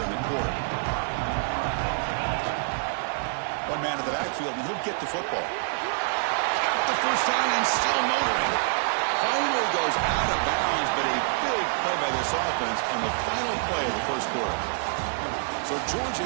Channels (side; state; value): left; silent; 60 dB below the other